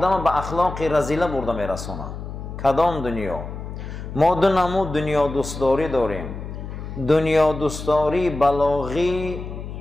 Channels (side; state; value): left; noise; hum, 9 dB below the sound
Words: به اخلاق رذیله برده میرسونه. کدام دنیا؟ ما دو نمود دنیا دوستداری داریم: دنیا دوستداری بلاغی